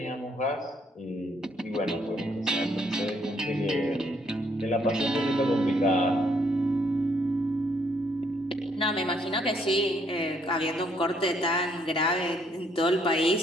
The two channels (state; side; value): normal; both; correlation 0.69